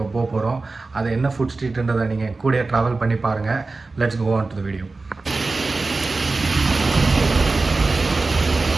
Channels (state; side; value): quieter; left; 3.6 dB